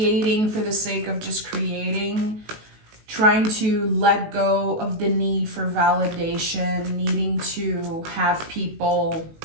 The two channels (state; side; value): late; left; 19 ms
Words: for the sake of just creating, trying to let go of the need for validation, needing to have people